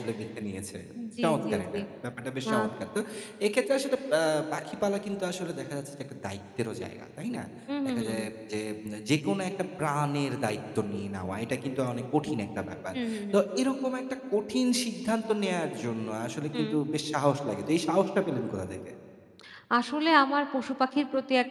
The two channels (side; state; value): both; identical; correlation 1.00